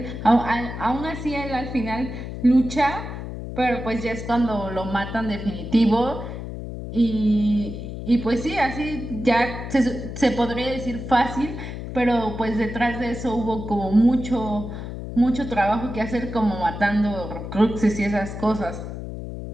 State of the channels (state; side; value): noise; left; hum, 8 dB below the sound